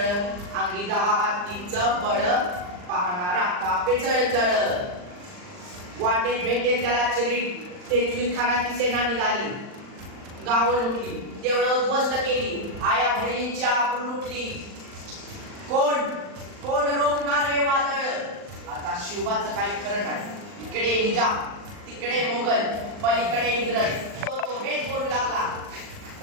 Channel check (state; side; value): late; left; 39 ms